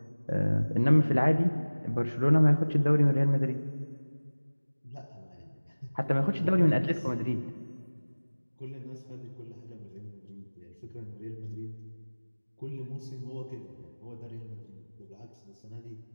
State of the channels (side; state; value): both; inverted; correlation -1.00